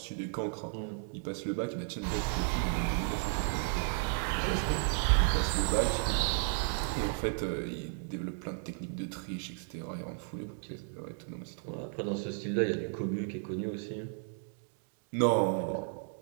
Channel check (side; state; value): left; silent; 55 dB below the other